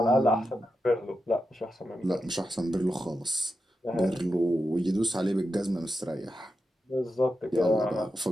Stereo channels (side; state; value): both; normal; correlation 0.88